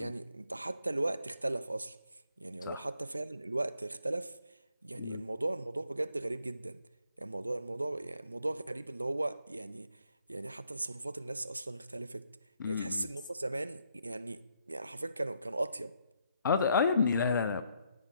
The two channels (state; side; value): inverted; both; correlation -0.74